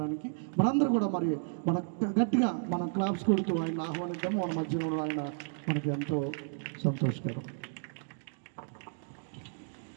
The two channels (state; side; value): silent; left; digital silence